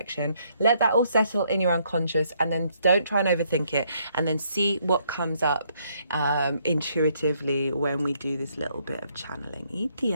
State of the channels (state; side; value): inverted; both; correlation -0.70